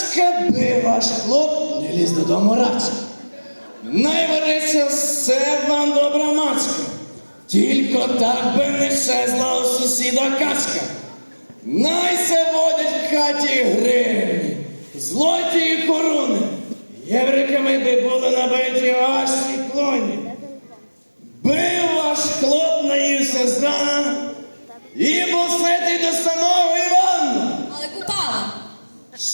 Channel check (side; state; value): both; inverted; correlation -1.00